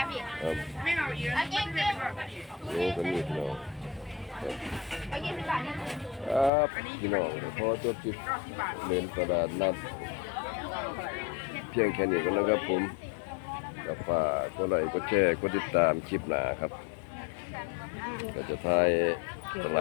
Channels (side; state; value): right; drops out; at 6.5 s